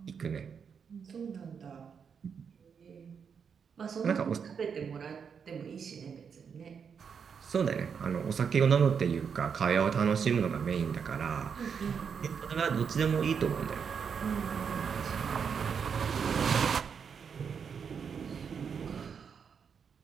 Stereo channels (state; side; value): quieter; left; 6.6 dB